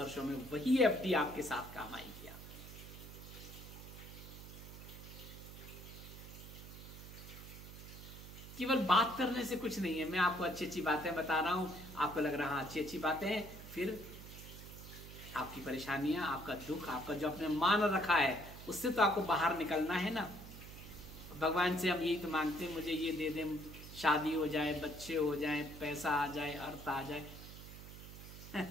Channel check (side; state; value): right; noise; hum, 13 dB below the sound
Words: में, वही एफडी आपके साथ काम आएगी। केवल बात करने से कुछ नहीं है। मैं आपको अच्छी अच्छी बातें बता रहा हूं, आपको लग रहा है अच्छी अच्छी बातें हैं, फिर आपकी परेशानियां, आपका दुख, आपका जो आपने मान रखा है, उससे तो आपको बाहर निकलना है ना। भगवान से हम यही तो मांगते हैं, मुझे ये दे दें, शादी हो जाए, बच्चे हो जाए, पैसा आ जाए, अर्थ आ जाए।